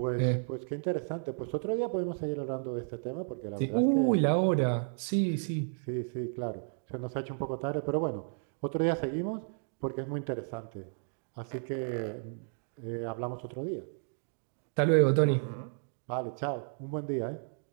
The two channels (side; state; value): left; silent; digital silence